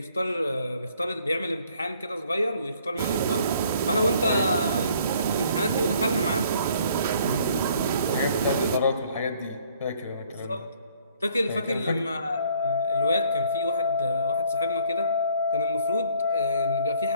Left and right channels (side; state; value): both; inverted; correlation -0.60